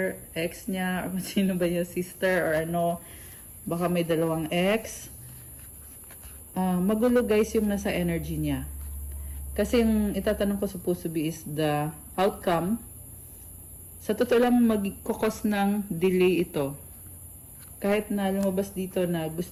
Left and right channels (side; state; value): both; identical; correlation 1.00